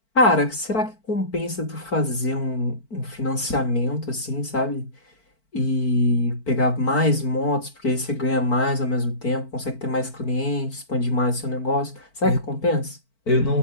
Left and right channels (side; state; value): right; late; 4.5 ms